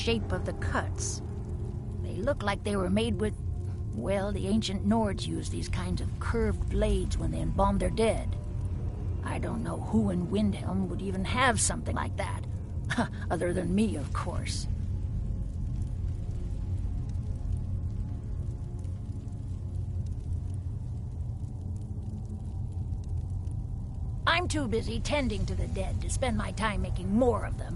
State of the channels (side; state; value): both; identical; correlation 1.00